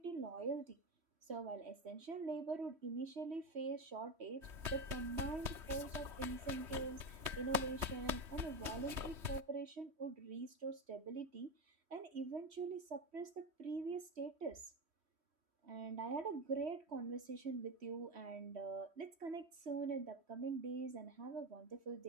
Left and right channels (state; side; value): late; left; 3.1 ms